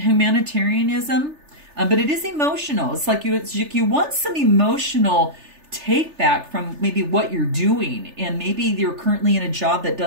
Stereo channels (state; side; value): late; left; 3.3 ms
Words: but it is emotional. It's like you want some emotional take back from maybe what you're doing, and maybe you're currently in a job that